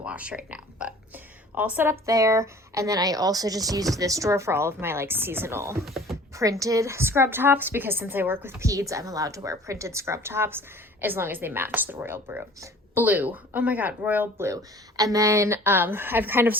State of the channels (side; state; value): both; normal; correlation 0.48